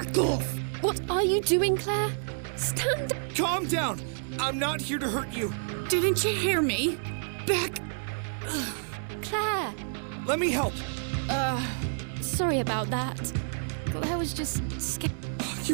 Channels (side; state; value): left; silent; 58 dB below the other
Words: off! What are you doing, Claire? Stand down! Calm down! I'm not here to hurt you. Didn't you hear me? Back... Claire! Let me help. Sorry about that. Claire was just scared.